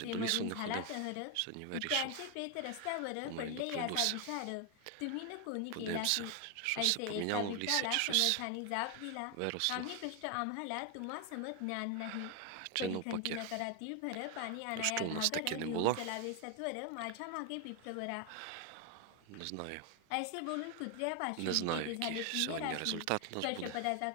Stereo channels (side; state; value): both; different; correlation 0.01